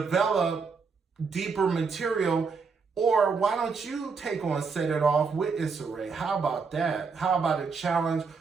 deeper material, or why don't you take on Set It Off with Issa Rae? How about that? How about a challenge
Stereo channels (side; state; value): left; quieter; 5.1 dB